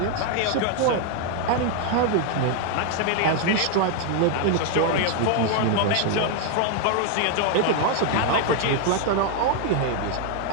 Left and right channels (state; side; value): different; both; correlation 0.00